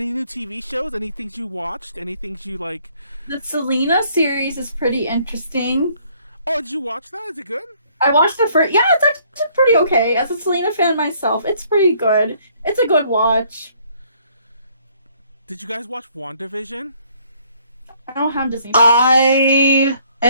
new TV shows? Any things you watched? Any things you like? The Selena series is pretty interesting. Oh, did you watch that? Is it good? I watched the first. Yeah, it's actually pretty okay. As a Selena fan myself, it's pretty good. It's a good watch. Did you guys watch WandaVision? I don't have Disney. I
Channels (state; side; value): inverted; both; correlation -0.63